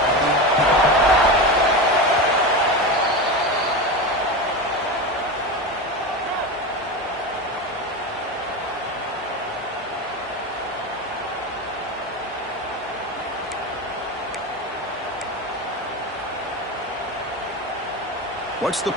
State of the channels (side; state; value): both; normal; correlation 0.21